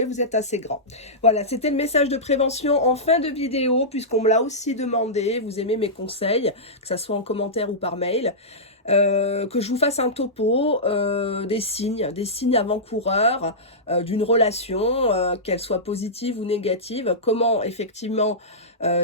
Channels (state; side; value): normal; both; correlation -0.14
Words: vous êtes assez grand. Voilà, c'était le message de prévention en fin de vidéo, puisqu'on me l'a aussi demandé. Vous aimez mes conseils, que ça soit en commentaire ou par mail. Que je vous fasse un topo des signes avant-coureurs d'une relation, qu'elle soit positive ou négative, comment effectivement